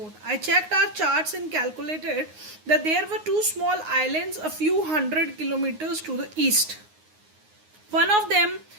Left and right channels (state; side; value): late; left; 9.5 ms